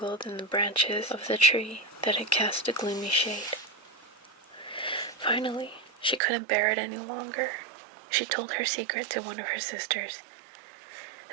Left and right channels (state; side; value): drops out; left; at 6.2 s